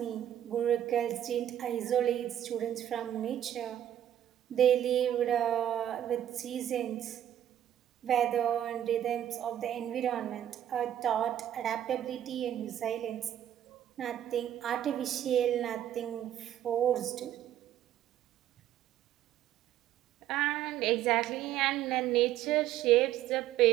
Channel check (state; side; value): quieter; left; 11.3 dB